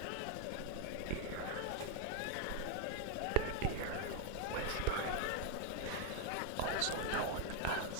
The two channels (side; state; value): both; different; correlation 0.01